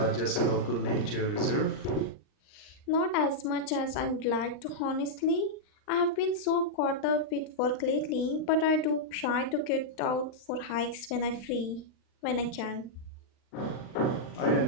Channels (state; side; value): late; right; 39 ms